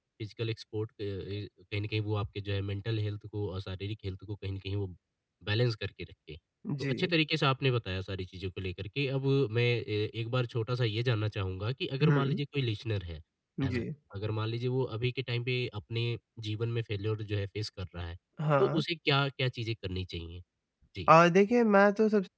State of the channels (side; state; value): both; identical; correlation 1.00